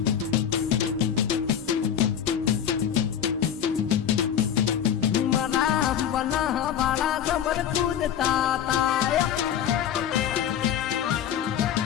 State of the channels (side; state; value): right; quieter; 9.3 dB